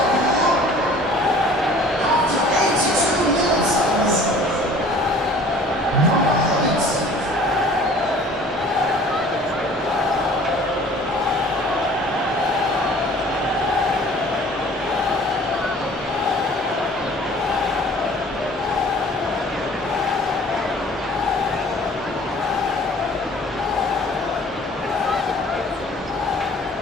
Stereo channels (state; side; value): normal; both; correlation 0.49